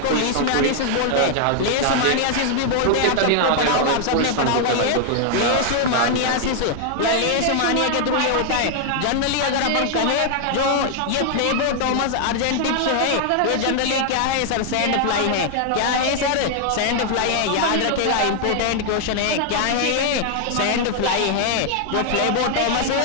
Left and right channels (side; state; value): both; different; correlation 0.00